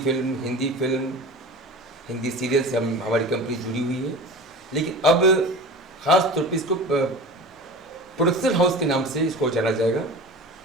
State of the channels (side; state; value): both; normal; correlation 0.34